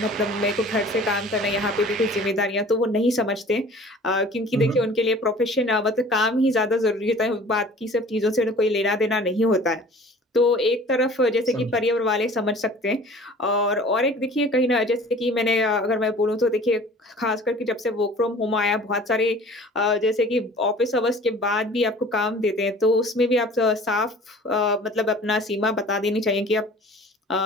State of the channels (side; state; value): both; normal; correlation 0.46